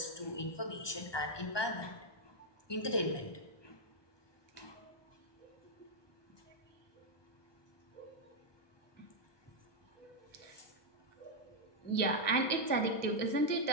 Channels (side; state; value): right; late; 1.2 ms